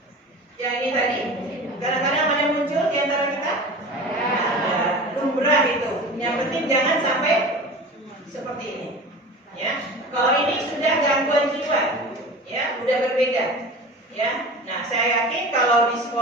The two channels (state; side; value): normal; both; correlation 0.36